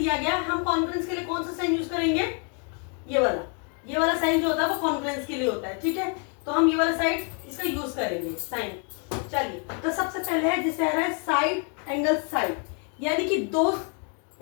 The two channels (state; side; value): quieter; right; 39.9 dB